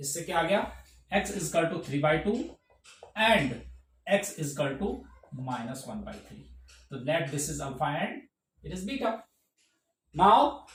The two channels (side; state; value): both; identical; correlation 1.00